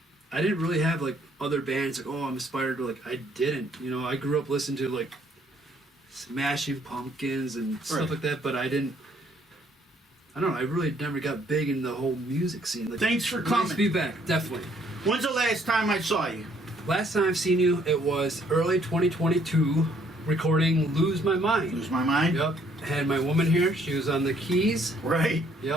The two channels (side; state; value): both; normal; correlation 0.65